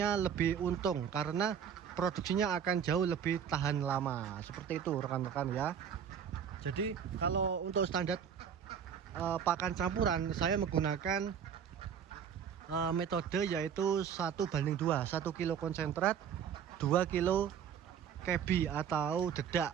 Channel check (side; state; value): left; quieter; 8.1 dB